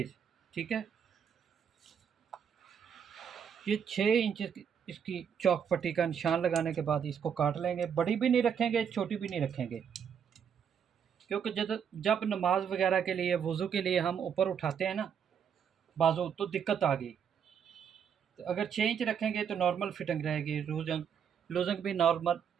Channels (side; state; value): left; quieter; 7.7 dB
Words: ठीक है। ये 6 इंच इसकी चौक पट्टी का निशान लगाने के बाद इसको काट लेंगे। बड़ी भी नहीं रखेंगे, छोटी भी नहीं रखेंगे, क्योंकि जब जब नमाज वगैरह के लिए, वज़ू के लिए हम ऊपर उठाते हैं ना बाजू, तो दिक्कत आ गई। तो अगर 6 इंच रखेंगे तो नॉर्मल फिटिंग रहेगी, लूजंग लूजंग भी नॉर्मल